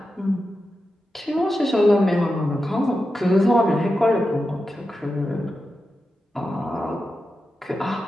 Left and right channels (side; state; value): both; normal; correlation 0.90